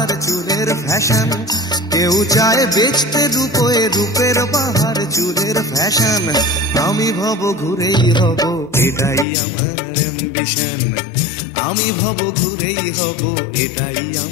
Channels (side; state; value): right; drops out; at 9.2 s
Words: চুলের ফ্যাশন, কেউ চায় বেচতে রূপে রূপের বাহার চুলের ফ্যাশন। আমি ভব ঘুরেই হব, এটাই আমার অ্যাম্বিশন। আমি ভব ঘুরেই হব, এটাই